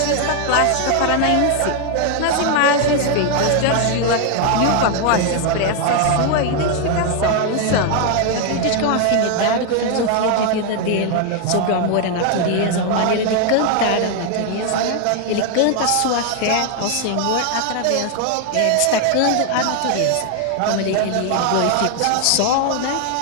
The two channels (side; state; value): both; different; correlation 0.00